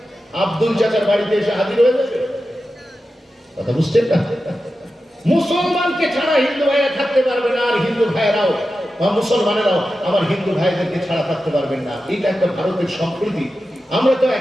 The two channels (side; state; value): both; normal; correlation 0.92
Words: আব্দুল চাচার বাড়িতে এসে হাজির হয়ে যাবে। কথা বুঝছেন না? মুসলমানকে ছাড়া হিন্দু ভাইরা থাকতে পারবে না, আর হিন্দু ভাইরাও বা মুসলমানেরাও আমার হিন্দু ভাইদেরকে ছাড়া থাকতে পারবেন না। এটা একটা ভারতের সম্প্রীতি। আমরা তো